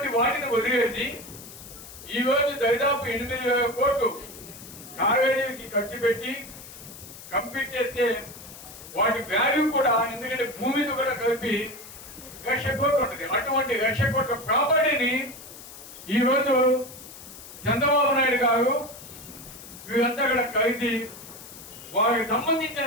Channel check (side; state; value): left; noise; hiss, 16 dB below the sound